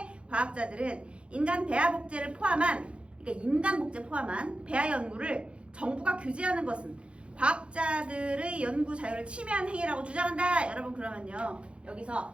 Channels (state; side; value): late; left; 0.059 ms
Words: 과학자들은 인간 배아 복제를 포함한, 그러니까 인간 복제 포함한 배아 연구를 정부가 규제하는 것은 과학자들의 연구 자유를 침해한 행위라고 주장한다. 여러분, 그러면요,